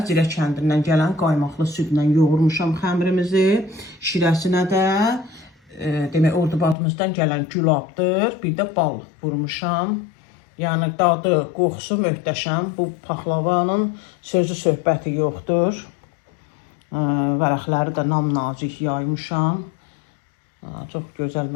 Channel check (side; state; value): right; drops out; at 6.8 s